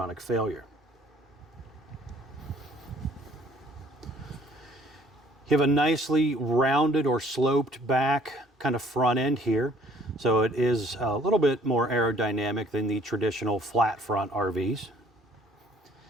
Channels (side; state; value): both; normal; correlation 0.57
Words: failure. You have a nicely rounded or sloped back kind of front end here. So it is a little bit more aerodynamic than the traditional flat front RVs.